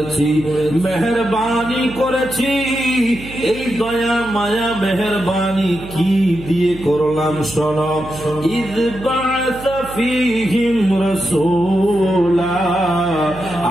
মেহেরবানি করেছি। এই দয়া মায়া মেহেরবানি কি দিয়ে করলাম শোনো। ইয বা'আসা ফীহিম রাসূলা,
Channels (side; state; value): right; noise; hum, 15 dB below the sound